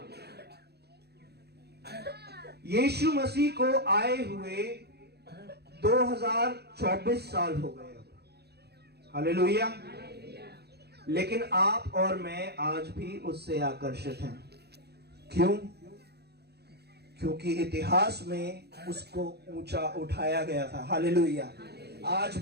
यीशु मसीह को आए हुए 2024 साल हो गए। हालेलुया। लेकिन आप और मैं आज भी उससे आकर्षित हैं। क्यों? क्योंकि इतिहास में उसको ऊंचा उठाया गया था। हालेलुया। आज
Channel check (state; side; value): late; left; 0.47 ms